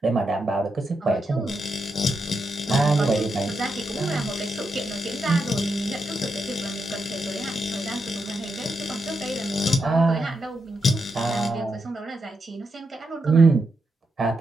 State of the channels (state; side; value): normal; both; correlation 0.84